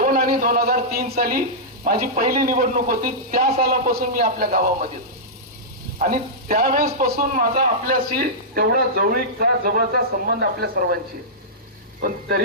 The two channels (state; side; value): normal; both; correlation -0.13